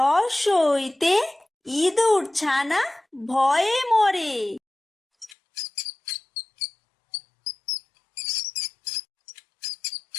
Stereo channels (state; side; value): drops out; right; at 5.4 s